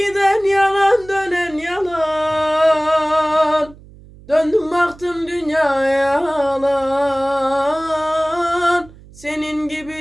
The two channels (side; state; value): right; noise; hum, 22 dB below the sound